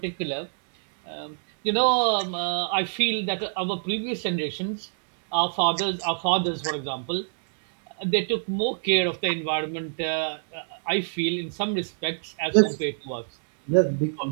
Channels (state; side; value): silent; left; digital silence